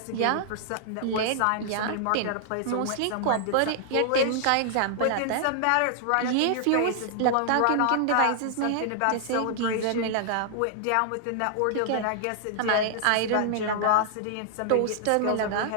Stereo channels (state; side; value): different; both; correlation -0.01